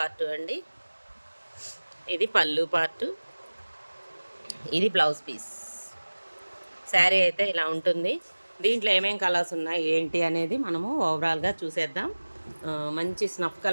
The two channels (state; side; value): inverted; both; correlation -1.00